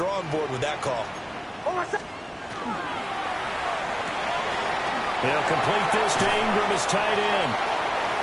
board with that call. They'll complete this to Ingram as tight end.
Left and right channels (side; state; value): both; identical; correlation 1.00